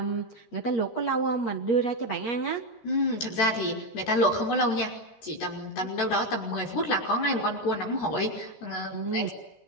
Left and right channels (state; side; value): late; right; 14 ms